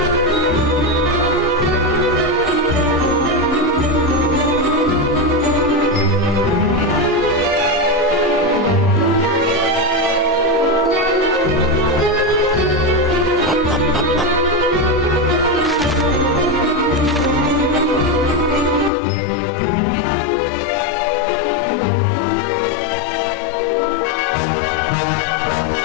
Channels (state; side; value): drops out; right; at 18.9 s